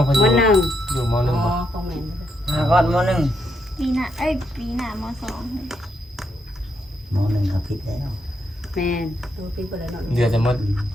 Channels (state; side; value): normal; both; correlation 0.79